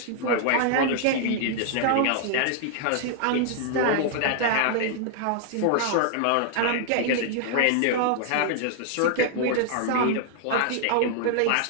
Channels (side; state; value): both; different; correlation 0.00